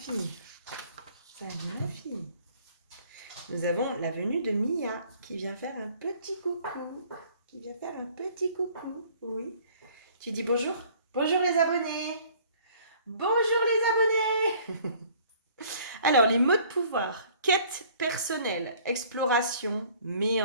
Salut ma fille. Nous avons la venue de Mia qui vient faire un petit coucou. Qui vient faire un petit coucou. Oui. Tu dis bonjour? Bonjour les abonnés. Bonjour les abonnés. Alors, les mots de pouvoir. Quête personnelle, exploration,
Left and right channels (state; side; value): inverted; both; correlation -0.55